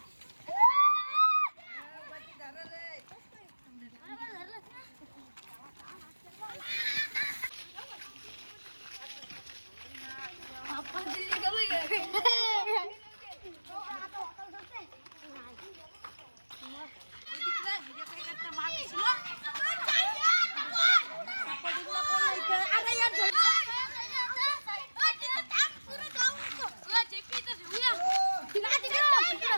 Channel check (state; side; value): inverted; both; correlation -1.00